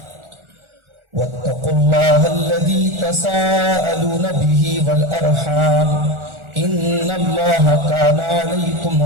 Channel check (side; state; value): left; late; 1.4 ms